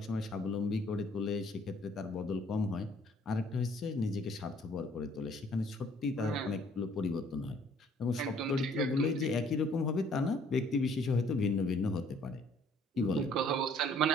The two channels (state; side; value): normal; both; correlation 0.59